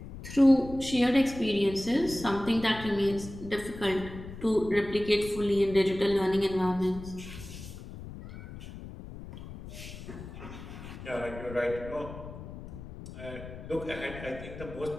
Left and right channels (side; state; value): left; noise; rumble, 12 dB below the sound